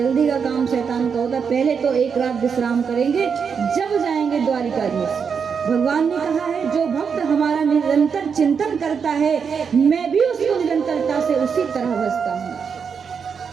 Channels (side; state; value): left; quieter; 6.3 dB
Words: का काम शैतान का होता, पहले तो एक रात विश्राम करेंगे, जब जाएंगे द्वारिकाधीश। भगवान ने कहा है जो भक्त हमारा निरंतर चिंतन करता है, मैं भी उसको निरंतरता से उसी तरह बसता हूँ।